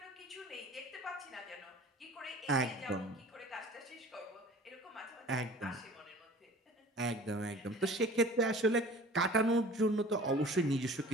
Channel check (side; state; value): both; normal; correlation 0.44